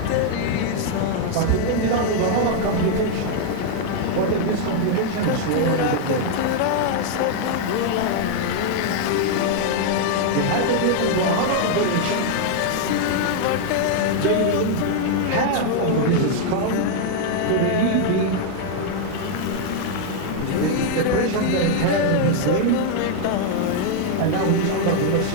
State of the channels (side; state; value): both; different; correlation 0.00